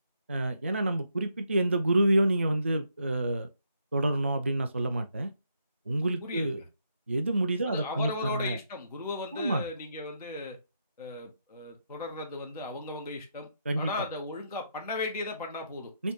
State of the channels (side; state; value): both; inverted; correlation -0.79